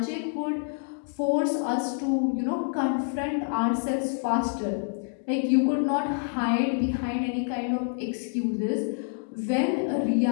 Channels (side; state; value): right; silent; digital silence